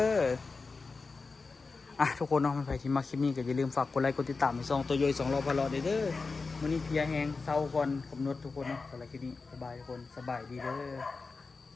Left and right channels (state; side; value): quieter; right; 4.2 dB